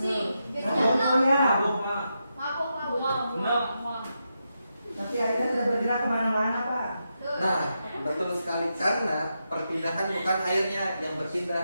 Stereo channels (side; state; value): both; inverted; correlation -0.86